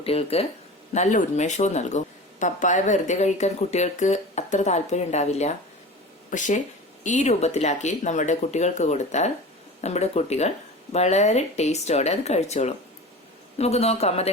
നല്ല ഉന്മേഷവും നൽകും. പപ്പായ വെറുതെ കഴിക്കാൻ കുട്ടികൾക്ക് അത്ര താല്പര്യം ഉണ്ടാവില്ല. പക്ഷെ ഈ രൂപത്തിലാക്കി നമ്മുടെ കുട്ടികൾക്ക് കൊടുത്താൽ നമ്മുടെ കുട്ടികൾ വളരെ ടേസ്റ്റോടെ അത് കഴിച്ചോളും. നമുക്ക് നോക്കാം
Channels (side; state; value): both; normal; correlation 0.34